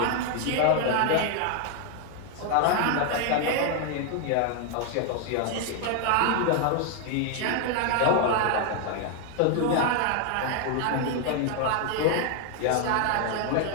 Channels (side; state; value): both; different; correlation 0.00